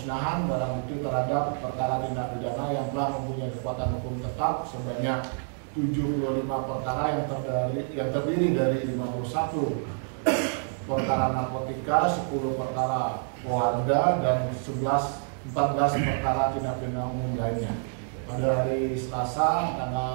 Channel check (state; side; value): silent; left; 60 dB below the other